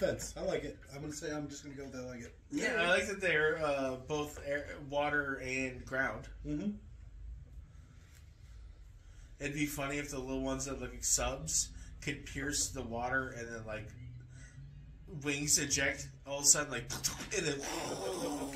I like it. I'm just gonna go with I like it. Yeah, I like that they're both water and ground. Mm-hmm. It'd be funny if the little ones that look like subs could pierce the water and then like wings eject all of a sudden, like,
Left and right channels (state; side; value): identical; both; correlation 1.00